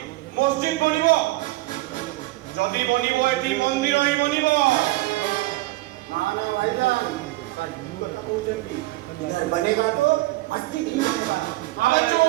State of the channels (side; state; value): left; quieter; 19.2 dB